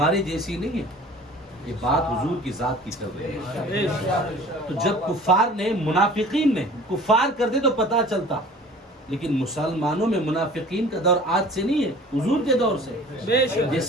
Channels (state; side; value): normal; both; correlation 0.45